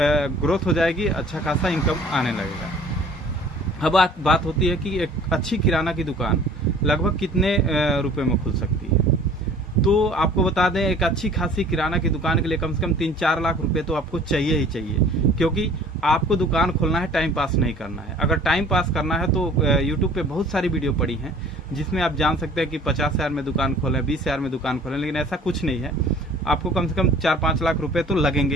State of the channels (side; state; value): both; normal; correlation 0.50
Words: हो जाएगी, अच्छा खासा इनकम आने लगेगा। अब बात होती है कि एक अच्छी किराना की दुकान लगभग कितने रुपए में खुल सकती है। तो आपको बता दें, एक अच्छी खासी किराना की दुकान के लिए कम से कम 3-4 लाख रुपए तो आपको चाहिए ही चाहिए, क्योंकि आपको दुकान खोलना है, टाइम पास नहीं करना है। अगर टाइम पास करना है तो यूट्यूब पे बहुत सारी वीडियो पड़ी हैं जिसमें आप जान सकते हैं कि 50,000 में दुकान खोलें, 20,000 में दुकान खोलें, लेकिन ऐसा कुछ नहीं है। आपको कम से कम 4-5 लाख रुपए तो लगेंगे